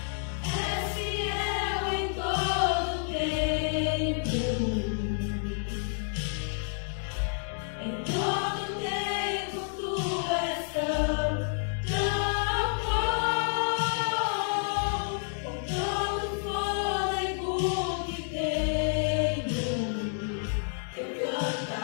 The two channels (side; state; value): right; silent; digital silence